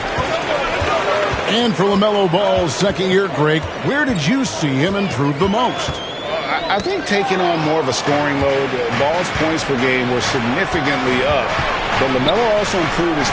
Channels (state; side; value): identical; both; correlation 1.00